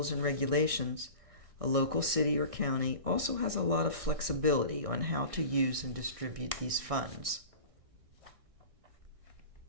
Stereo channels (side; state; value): left; late; 1.6 ms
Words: and regulations, a local city or county also has a lot of flexibility on how to use and distribute these funds.